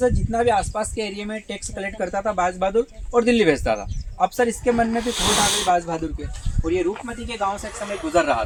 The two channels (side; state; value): both; identical; correlation 1.00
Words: जितना भी आसपास के एरिया में टैक्स कलेक्ट करता था बाज बहादुर और दिल्ली भेजता था। अब सर इसके मन में भी खोट आ गई बाज बहादुर के, और ये रूपमती के गांव से एक समय गुजर रहा